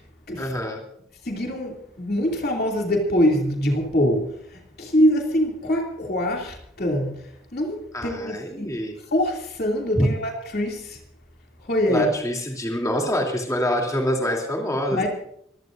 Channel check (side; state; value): both; normal; correlation 0.57